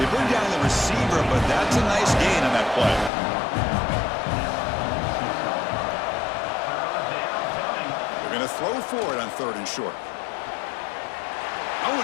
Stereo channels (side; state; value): right; drops out; at 3.1 s